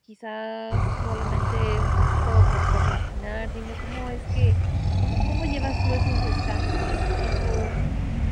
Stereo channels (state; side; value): identical; both; correlation 1.00